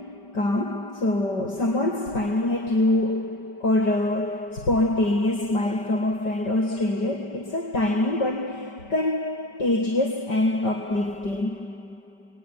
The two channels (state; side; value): late; right; 5.2 ms